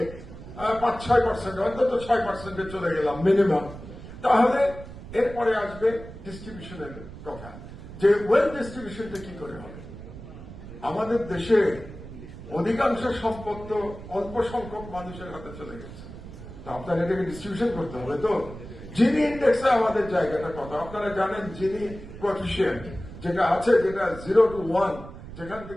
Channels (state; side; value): noise; right; rumble, 14 dB below the sound